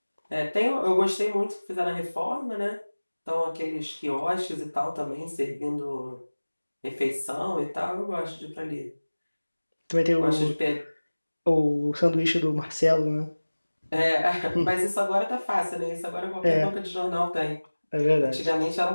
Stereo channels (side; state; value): both; inverted; correlation -1.00